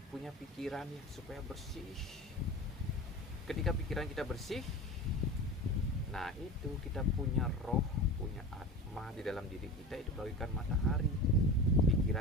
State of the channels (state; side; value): normal; both; correlation 0.31